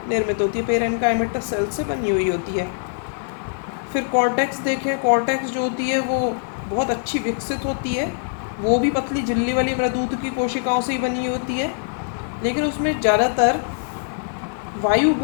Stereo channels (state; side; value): silent; right; digital silence